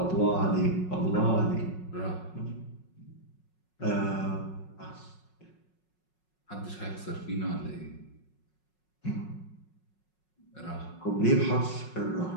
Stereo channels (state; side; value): late; right; 5.5 ms